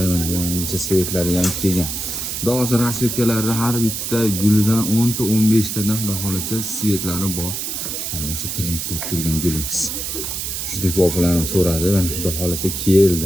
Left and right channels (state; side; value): noise; right; hiss, 4 dB below the sound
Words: mana yangicha svetlari ham kelgan. Xudo xolasa rasvetkalari har bitta gulidan 10 ta 15 tadan xudo xolasa svetlari bor. Mana o'sha trendda turgan gulimiz. Juda ko'p opalarim so'radi, mana xudo xolasa